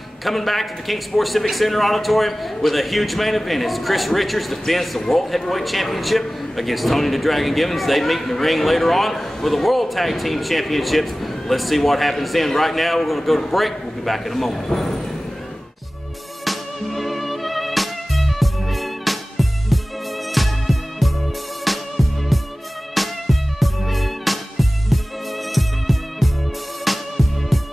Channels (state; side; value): normal; both; correlation 0.97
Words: coming back to the King Sports Civic Center Auditorium with a huge main event as Chris Richards defends the World Heavyweight Championship against Tony the Dragon Gibbons. They meet in the ring later on for the World Tag Team Championships. Let's see what happens then. Right now, we're going to go to break. We'll be back in a moment.